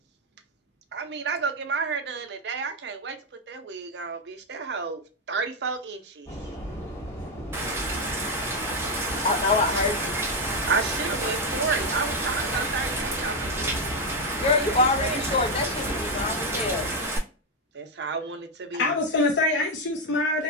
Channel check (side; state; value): both; normal; correlation 0.05